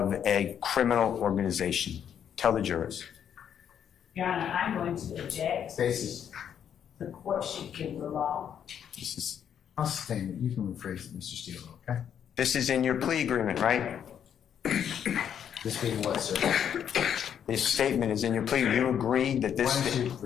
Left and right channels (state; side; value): quieter; right; 8.8 dB